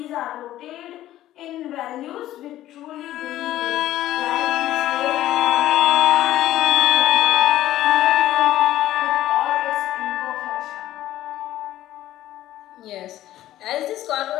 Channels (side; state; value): right; quieter; 13.8 dB